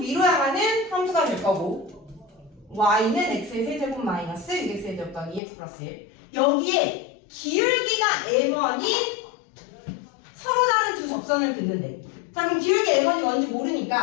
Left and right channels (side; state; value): right; drops out; at 5.4 s